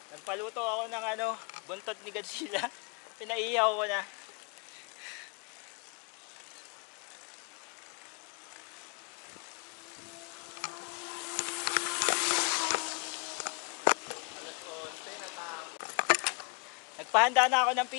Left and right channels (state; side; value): quieter; right; 33.0 dB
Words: Nagpaluto ako ng ano, buntot ni Godzilla. Pinaihaw ko na. Nagpahanda na ako ng